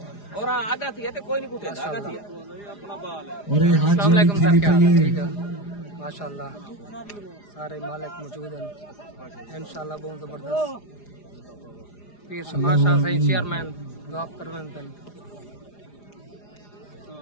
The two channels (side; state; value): right; late; 4.9 ms